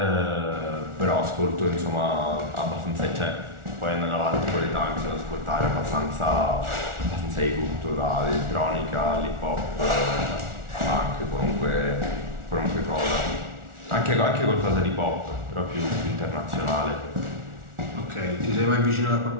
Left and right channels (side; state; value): left; late; 1.4 ms